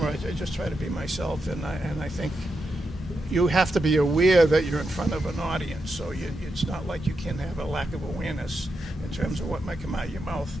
I just try to be myself, and I think you have to be aware that you're in front of an audience. So it's not like you can have a lack of awareness in terms of what might come out of your mouth.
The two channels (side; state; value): both; normal; correlation 0.86